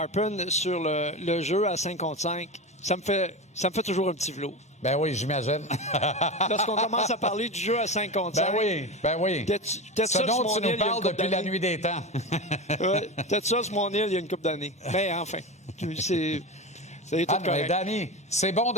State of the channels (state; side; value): normal; both; correlation 0.23